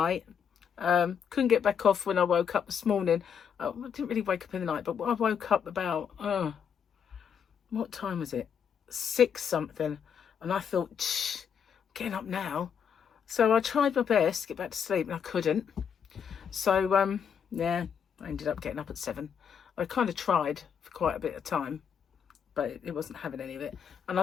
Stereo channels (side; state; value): right; quieter; 7.5 dB